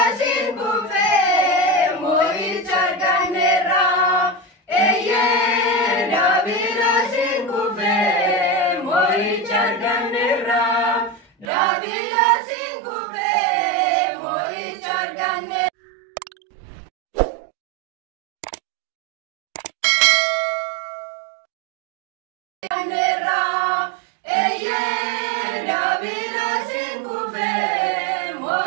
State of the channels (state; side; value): drops out; left; at 11.5 s